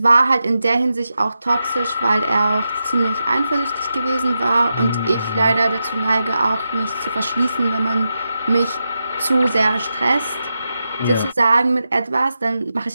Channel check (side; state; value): both; inverted; correlation -0.88